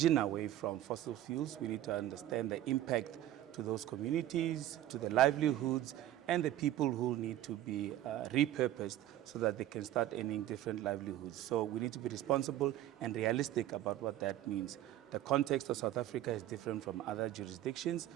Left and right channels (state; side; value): quieter; left; 13.1 dB